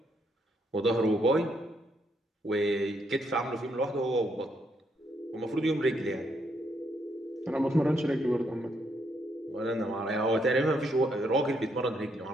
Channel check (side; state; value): both; normal; correlation 0.75